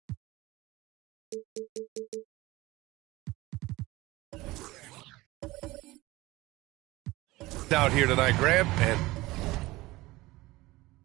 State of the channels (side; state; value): left; quieter; 19.7 dB